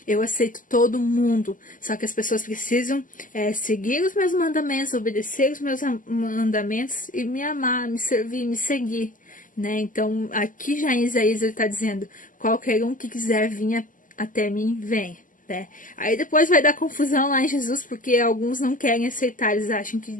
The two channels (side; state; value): right; late; 0.38 ms